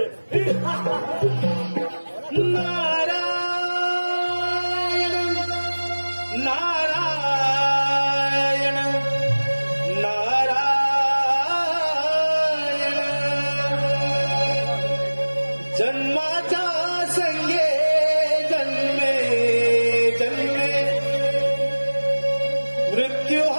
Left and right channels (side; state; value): both; inverted; correlation -1.00